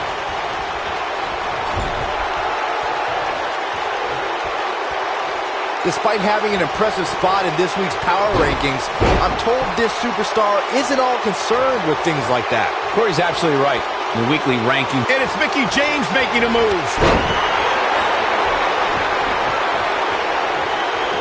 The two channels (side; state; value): both; identical; correlation 1.00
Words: Despite having an impressive spot in this week's power rankings, I'm told this superstar isn't all concerned with things like that. Corey's absolutely right. The weekly ranking. And it's Mickie James making a move.